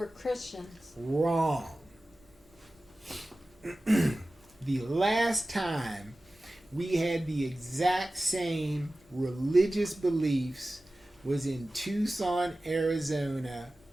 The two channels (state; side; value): normal; both; correlation 0.96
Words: Christians. Wrong. The last time we had the exact same religious beliefs was in Tucson, Arizona